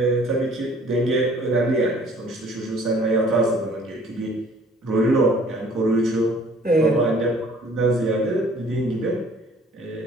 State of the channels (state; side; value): normal; both; correlation 0.55